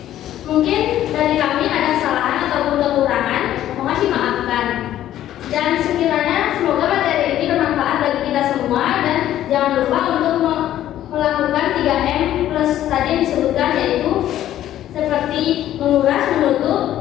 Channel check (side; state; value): right; quieter; 12.4 dB